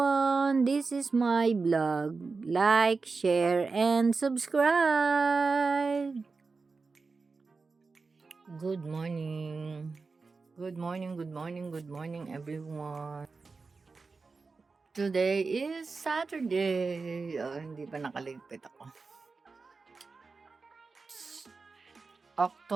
This is my blog. Like, share, and subscribe. Good morning. Good morning, good morning, good morning, everyone. Today is Saturday. Oh, hindi pa nakaligpit ako.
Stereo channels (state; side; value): quieter; left; 4.3 dB